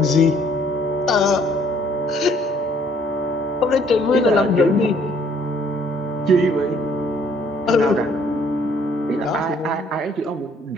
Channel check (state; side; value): normal; both; correlation 0.63